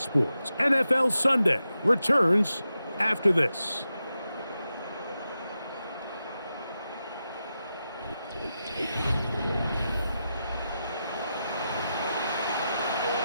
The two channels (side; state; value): both; inverted; correlation -0.89